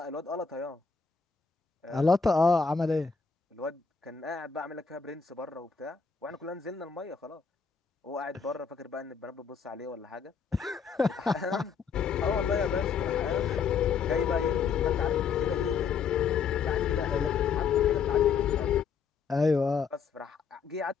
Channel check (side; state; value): right; quieter; 5.9 dB